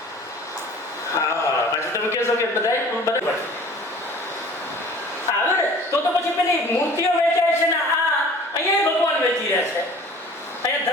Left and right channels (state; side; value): normal; both; correlation 0.46